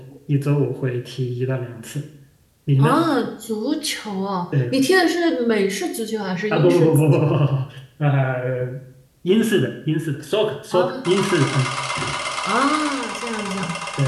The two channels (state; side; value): identical; both; correlation 1.00